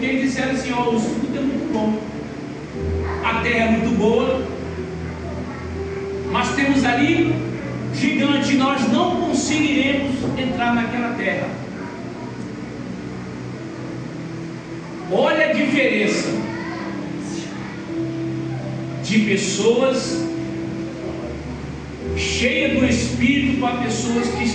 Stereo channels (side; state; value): both; identical; correlation 1.00